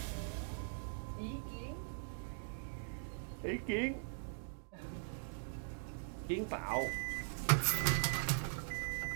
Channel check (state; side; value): silent; left; digital silence